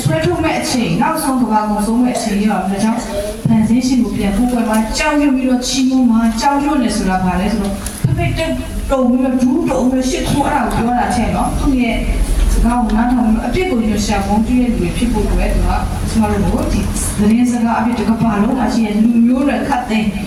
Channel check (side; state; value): both; identical; correlation 1.00